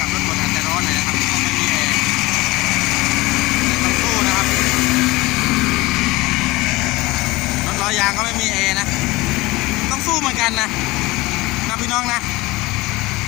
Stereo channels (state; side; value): quieter; right; 21.1 dB